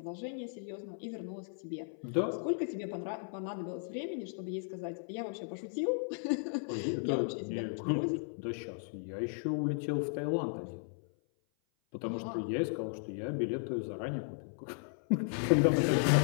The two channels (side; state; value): right; silent; 54 dB below the other